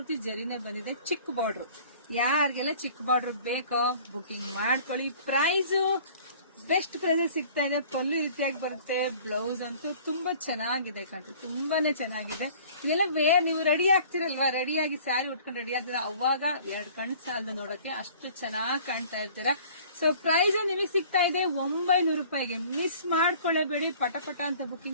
ಜರಿನೇ ಬಂದಿದೆ. ಚಿಕ್ಕ ಬಾರ್ಡರ್, ಯಾರಿಗೆಲ್ಲ ಚಿಕ್ಕ ಬಾರ್ಡರ್ ಬೇಕೋ ಬುಕಿಂಗ್ ಮಾಡ್ಕೊಳ್ಳಿ. ಪ್ರೈಸ್ ಬೆಸ್ಟ್ ಪ್ರೈಸ್ ಸಿಗ್ತಾ ಇದೆ. ಪಲ್ಲು ರೀತಿಯಾಗಿ ಬರುತ್ತೆ. ಬ್ಲೌಸ್ ಅಂತೂ ತುಂಬಾ ಚೆನ್ನಾಗಿದೆ ಕಣ್ರಿ, ತುಂಬಾನೇ ಚೆನ್ನಾಗಿದೆ. ಇದೆಲ್ಲ ನೀವು ರೆಡಿ ಆಗ್ತಿರಲ್ವಾ, ರೆಡಿಯಾಗಿ ಸ್ಯಾರಿ ಉಟ್ಕೊಂಡು ರೆಡಿ ಆಗ್ತೀರಾ, ಅವಾಗ ಎರಡು ಕಣ್ ಸಾಲದು ನೋಡಕ್ಕೆ, ಅಷ್ಟು ಚೆನ್ನಾಗಿ ಕಾಣ್ತಾ ಇರ್ತೀರಾ. ಸೊ ಪ್ರೈಸ್ ನಿಮಗೆ ಸಿಗ್ತಾ ಇದೆ 900 ರೂಪಾಯಿಗೆ. ಮಿಸ್ ಮಾಡ್ಕೊಳ್ಳೇಬೇಡಿ, ಪಟ ಅಂತ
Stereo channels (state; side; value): inverted; both; correlation -0.50